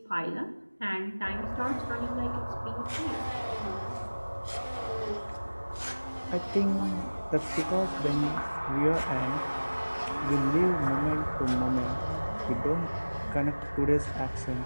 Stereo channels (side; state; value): both; inverted; correlation -1.00